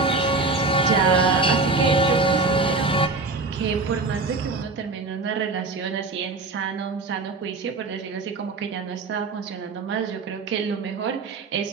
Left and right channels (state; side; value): quieter; left; 3.6 dB